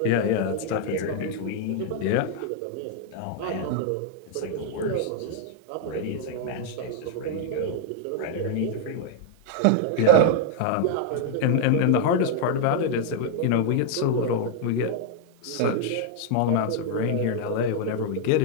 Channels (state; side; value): different; both; correlation 0.00